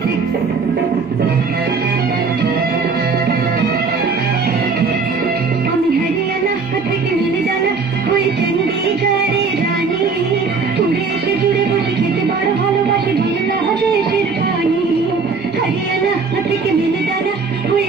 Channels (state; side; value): quieter; left; 4.7 dB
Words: আমি হরিয়ানা থেকে মিলিদানা হয়ে চণ্ডীগড়ের রানী, উড়ে এসে জুড়ে বসে খেতে বড় ভালোবাসি বাংলাদেশের পানি। হরিয়ানা থেকে মিলিদানা হয়ে